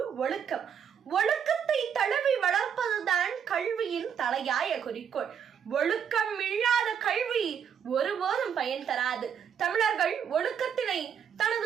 ஒழுக்கம். ஒழுக்கத்தை தழுவி வளர்ப்பதுதான் கல்வியின் தலையாய குறிக்கோள். ஒழுக்கம் இல்லாத கல்வி ஒருபோதும் பயன் தராது. தமிழர்கள் ஒழுக்கத்தினை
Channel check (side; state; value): left; quieter; 7.9 dB